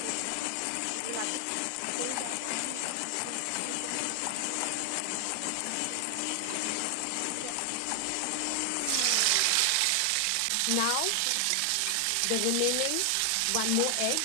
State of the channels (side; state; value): both; different; correlation 0.00